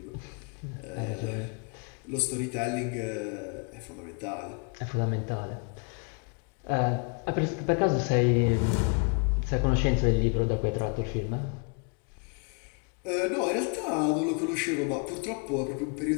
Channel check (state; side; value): quieter; right; 36.2 dB